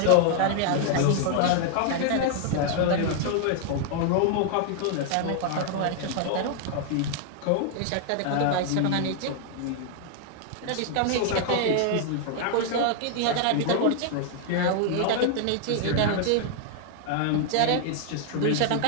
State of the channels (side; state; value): both; different; correlation 0.00